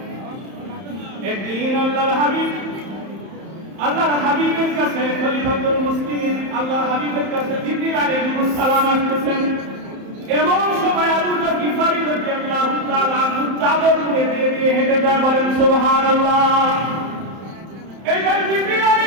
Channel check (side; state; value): left; late; 31 ms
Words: একদিন আল্লাহর হাবিবের কাছে খলিফাতুল মুসলিমিন, আল্লাহর হাবিবের কাছে জিবরিল আলাইহিস সালাম আসছেন। এমন সময় আবু যর গিফারী রাদিয়াল্লাহু তাআলা আনহু চাদর মুড়ে দিয়ে হেঁটে যায়, বলেন সুবহানাল্লাহ। এইবার জিবরিল